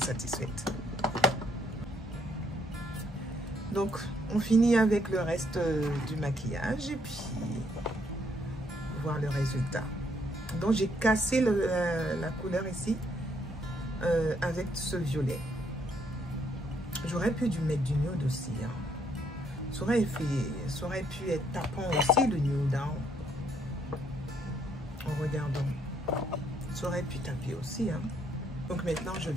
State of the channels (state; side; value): normal; both; correlation 0.70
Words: Donc, on finit avec le reste du maquillage et puis voir le résultat. Donc, j'ai cassé la couleur ici avec ce violet. J'aurais pu mettre du nude aussi. Hein. Ça aurait pu être tapant aussi le nude. Hein. En regardant. Ça aurait pu taper aussi. Hein. Donc, maintenant, je